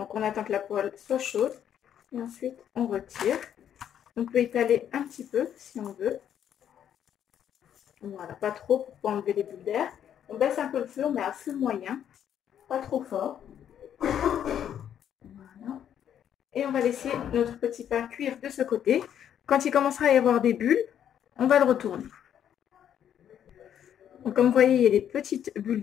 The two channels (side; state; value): right; quieter; 9.6 dB